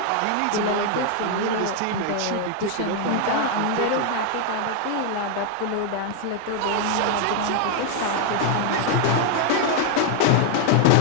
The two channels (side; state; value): both; different; correlation 0.00